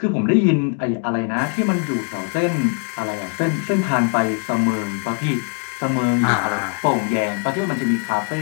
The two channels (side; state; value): right; quieter; 38.1 dB